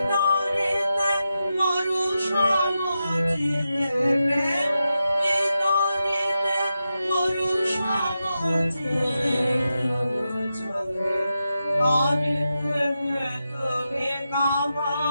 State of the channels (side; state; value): both; inverted; correlation -0.89